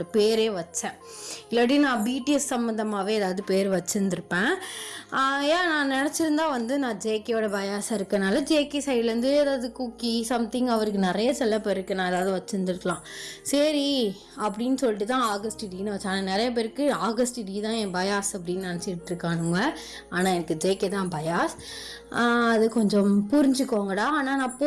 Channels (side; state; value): both; identical; correlation 1.00